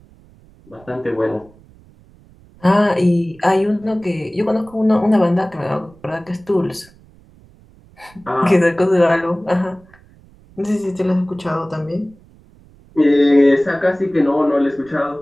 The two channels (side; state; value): right; noise; rumble, 27 dB below the sound